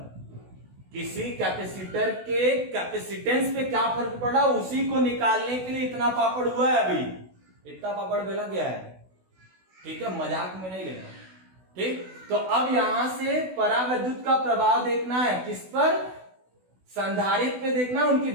किसी कैपेसिटर के कैपेसिटेंस पे क्या फर्क पड़ा, उसी को निकालने के लिए इतना पापड़ हुआ है, अभी इतना पापड़ बेला गया है, ठीक है, मजाक में नहीं लेना, ठीक। तो अब यहां से परावैद्युत का प्रभाव देखना है, किस पर, संधारित्र पे देखना है, उनकी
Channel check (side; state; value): left; late; 16 ms